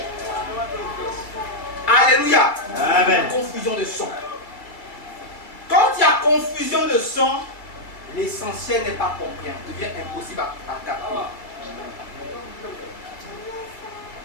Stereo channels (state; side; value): late; right; 2.2 ms